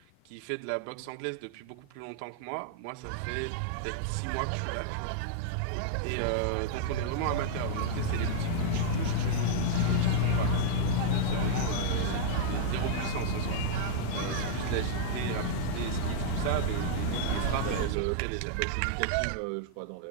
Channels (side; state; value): both; different; correlation -0.01